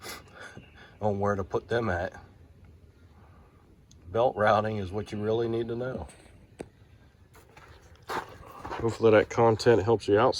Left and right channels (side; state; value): both; identical; correlation 1.00